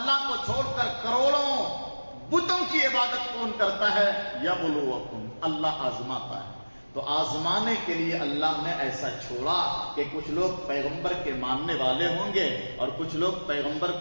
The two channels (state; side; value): inverted; both; correlation -1.00